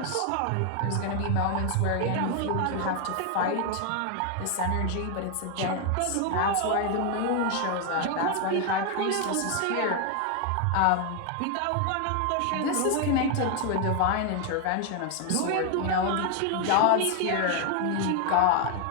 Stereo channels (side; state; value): both; different; correlation 0.00